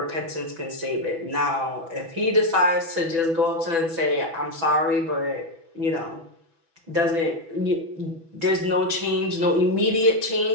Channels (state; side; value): late; left; 6.1 ms